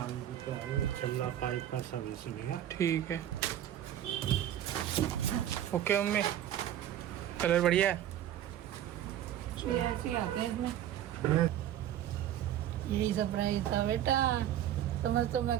रुपये है। छल्ला पाइप का सर्विसिंग है। ठीक है, ओके मम्मी। कलर बढ़िया है। ऐसे ही आते हैं इसमें। यही सरप्राइज था बेटा, समझ तो मैं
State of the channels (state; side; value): quieter; left; 11.4 dB